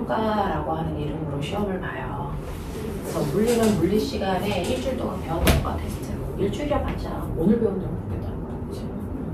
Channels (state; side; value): identical; both; correlation 1.00